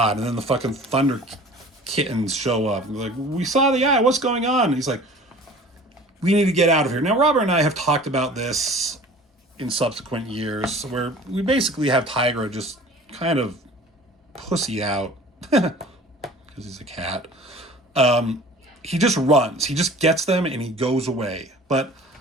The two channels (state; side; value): normal; both; correlation 0.45